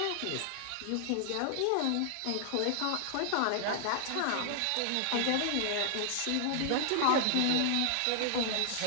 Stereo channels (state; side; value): different; both; correlation 0.00